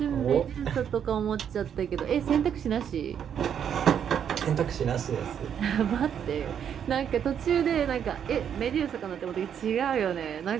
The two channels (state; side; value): quieter; left; 8.5 dB